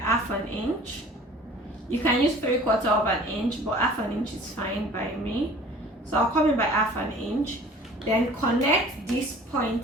1/2 inch. You can use 3/4 of an inch, but 1/2 inch is fine by me. So I'll come in by 1/2 inch, then connect this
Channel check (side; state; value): both; normal; correlation 0.47